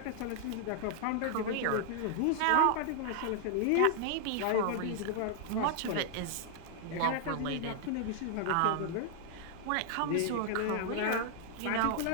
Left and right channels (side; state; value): both; different; correlation 0.00